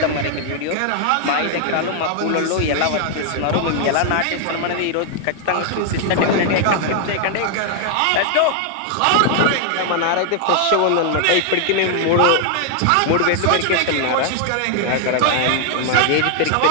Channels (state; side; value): different; both; correlation 0.00